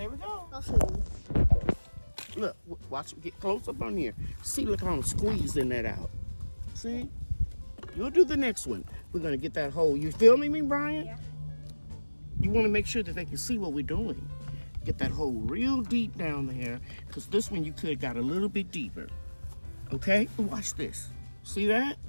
we go. I'll show you. Look, watch it. Get close up on here. See, look how I'm squeezing that out. See? You'll do the next one. We're gonna get that hole. You filming me, Brian? Yeah. You want to make sure that they can see what we're doing. Get that hole real deep down there, because this one you could have got a little bit deeper. Okay? Watch this. See that?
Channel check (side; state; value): both; inverted; correlation -1.00